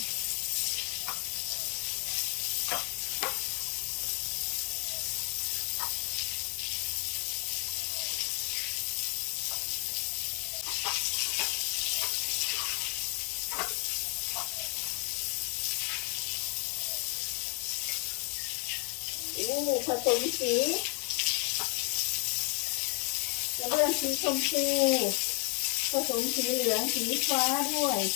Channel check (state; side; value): quieter; right; 32.3 dB